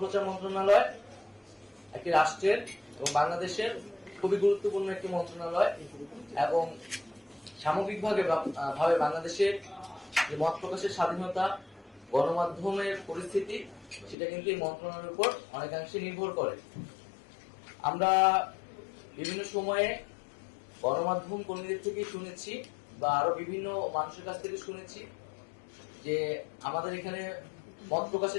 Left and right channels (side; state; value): right; drops out; at 14.2 s